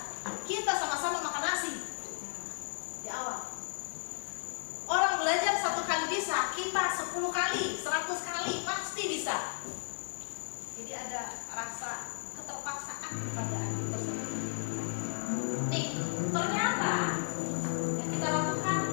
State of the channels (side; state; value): right; silent; digital silence